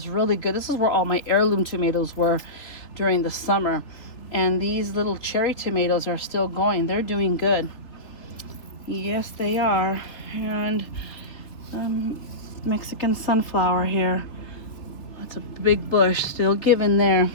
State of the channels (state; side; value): late; right; 3.3 ms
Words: really good. This is where all my heirloom tomatoes were during the summer. And these little cherry tomatoes are still going. They're doing good. Yes, they are. And Mexican sunflower here. That's a big bush still giving there.